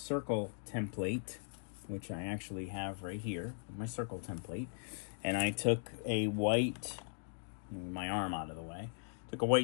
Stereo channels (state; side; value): silent; right; digital silence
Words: template, which I actually have right here, my circle template, and I took a white, my arm out of the way, took a